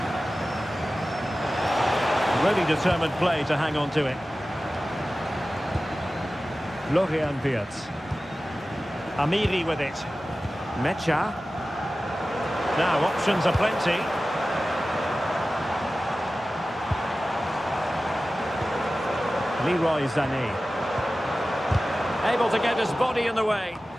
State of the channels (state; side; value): normal; both; correlation 0.95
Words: Really determined play to hang on to it. Florian Wirtz. Amiri with it. Mecha. Now options are plenty. Leroy Sané. Able to get his body in the way.